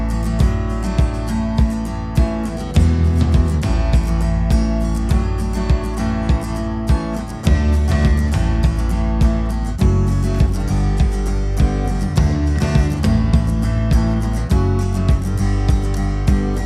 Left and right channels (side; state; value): both; identical; correlation 1.00